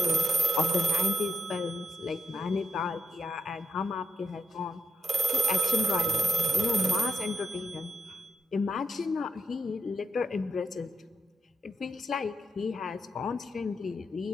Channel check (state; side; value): normal; both; correlation 0.82